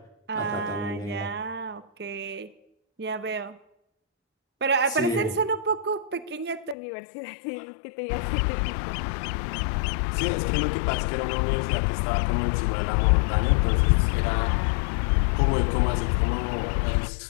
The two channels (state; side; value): drops out; right; at 6.8 s